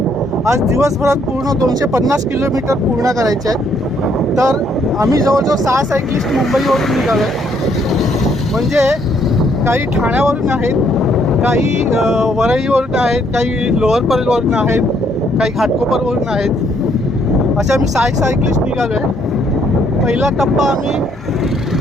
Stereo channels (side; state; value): both; normal; correlation 0.69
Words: आज दिवसभरात पूर्ण 250 किलोमीटर पूर्ण करायचे आहेत. तर आम्ही जवळजवळ 6 सायक्लिस्ट मुंबईवरून निघालो आहे. म्हणजे काही ठाण्यावरून आहेत, काही वरईवरून आहेत, काही लोअर परेलवरून आहेत, काही घाटकोपरवरून आहेत. असे आम्ही 6 सायक्लिस्ट निघालो आहे. पहिला टप्पा आम्ही